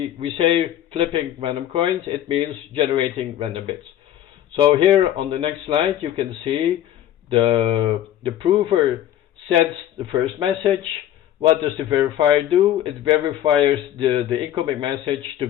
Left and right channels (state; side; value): quieter; right; 11.8 dB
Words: say flipping random coins, it means generating random bits. So here on the next slide, you can see the prover sends the first message. What does the verifier do? It verifies the incoming message